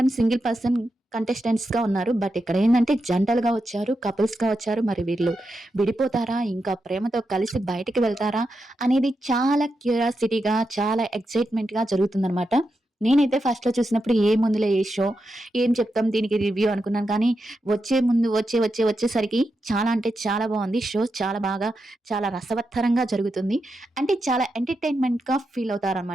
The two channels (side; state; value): both; normal; correlation 0.87